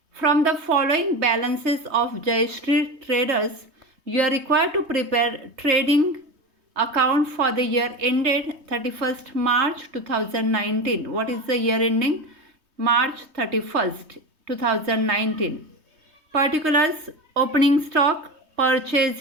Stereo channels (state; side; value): late; left; 3.2 ms